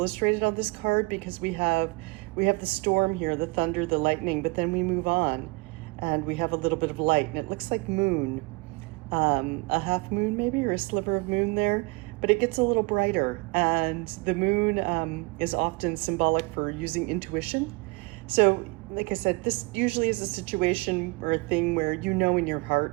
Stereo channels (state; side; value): quieter; left; 27.1 dB